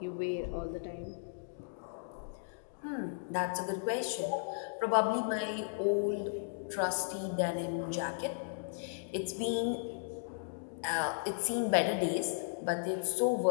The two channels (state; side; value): silent; right; digital silence